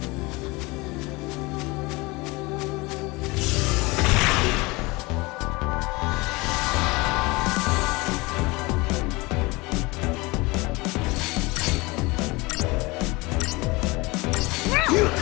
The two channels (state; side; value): quieter; right; 24.0 dB